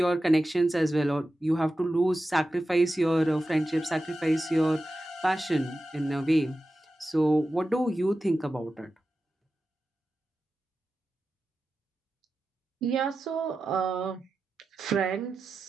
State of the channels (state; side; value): normal; both; correlation 0.93